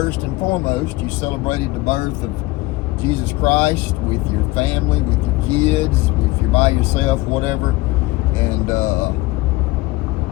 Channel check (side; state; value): right; quieter; 20.3 dB